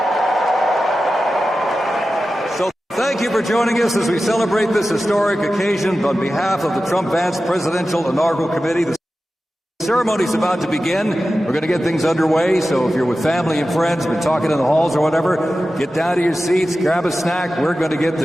So thank you for joining us as we celebrate this historic occasion on behalf of the Trump-Vance Presidential Inaugural Committee. The ceremony is about to begin. We're going to get things underway, so if you're with family and friends, been talking in the halls or whatever, get down to your seats, grab a snack. We're going to get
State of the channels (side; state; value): both; normal; correlation 0.94